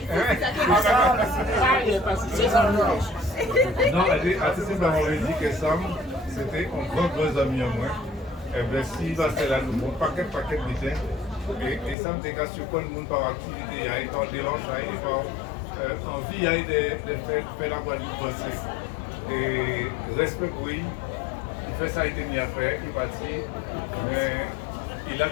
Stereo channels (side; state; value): right; drops out; at 12.0 s